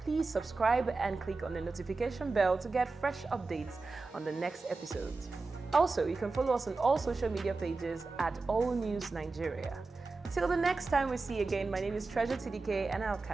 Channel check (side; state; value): left; quieter; 3.8 dB